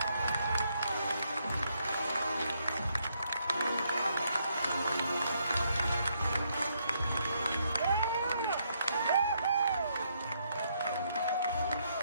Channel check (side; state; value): both; inverted; correlation -0.75